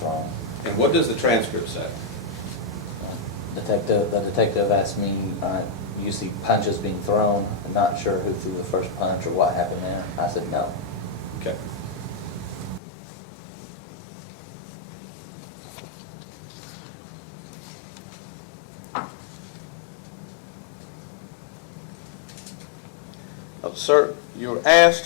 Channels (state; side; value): drops out; right; at 12.8 s